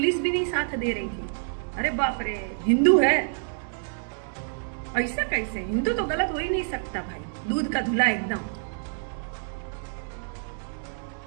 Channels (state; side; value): silent; left; digital silence